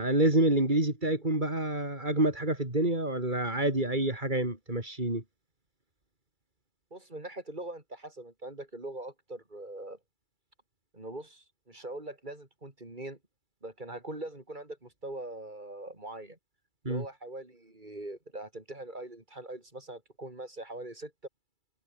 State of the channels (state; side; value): late; left; 2.3 ms